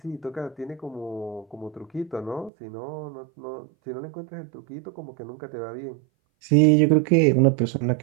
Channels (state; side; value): drops out; left; at 2.5 s